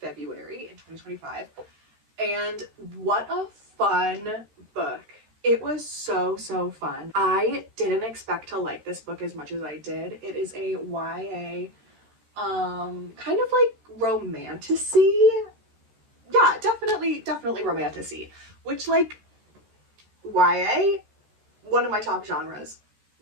February in 2025. And what a fun book. It was so fun. I didn't expect to like this book as much as I did. It is a YA, kind of like romantasy. Yeah, definitely romantasy, which like YA, one of my top genres.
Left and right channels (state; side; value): late; left; 13 ms